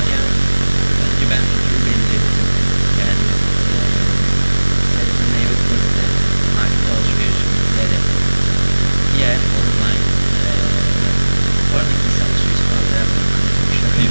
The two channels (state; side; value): inverted; both; correlation -1.00